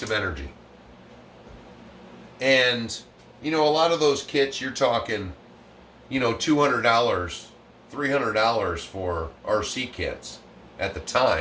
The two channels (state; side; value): identical; both; correlation 1.00